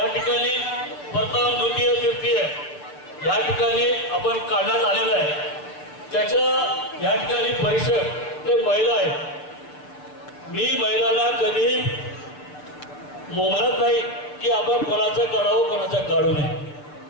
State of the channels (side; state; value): right; late; 6.8 ms